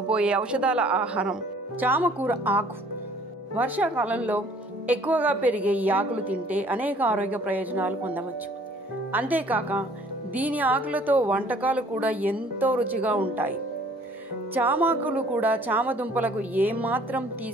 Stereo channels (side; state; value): both; normal; correlation 0.56